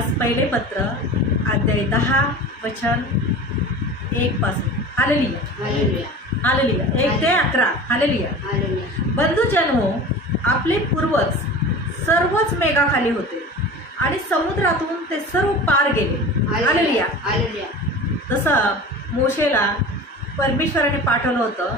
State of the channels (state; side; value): normal; both; correlation 0.36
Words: पहिले पत्र अध्याय 10 वचन 1 पासून. Hallelujah hallelujah. हालेलुया 1 ते 11. हालेलुया. हालेलुया. बंधुजनो, आपले पूर्वज सर्वच मेघाखाली होते आणि समुद्रातून ते सर्व पार गेले. हालेलुया. हालेलुया. जसं मोशेला परमेश्वराने पाठवलं होतं